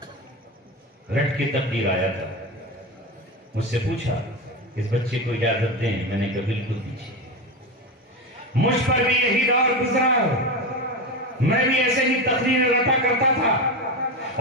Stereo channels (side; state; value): both; normal; correlation 0.18